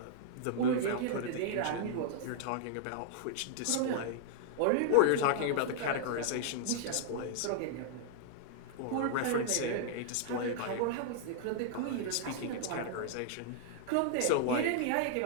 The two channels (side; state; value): both; different; correlation -0.01